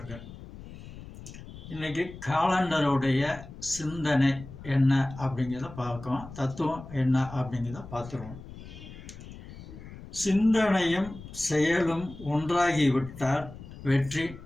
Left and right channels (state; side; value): noise; left; rumble, 15 dB below the sound